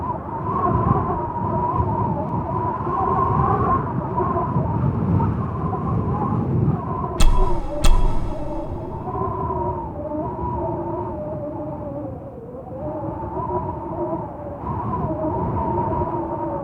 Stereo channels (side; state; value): both; identical; correlation 1.00